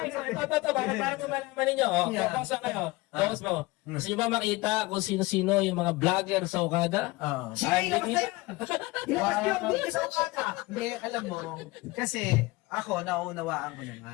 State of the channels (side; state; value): right; quieter; 21.8 dB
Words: so ito, para malaman ninyo. Focus lang kayo. Focus mo. Gusto nyo ba makita kung sino-sino yung mga vlogger sa Okada? Sige, kapatid! Hindi sa ukada. Hindi, alam mo, kasi ako, naunawaan ko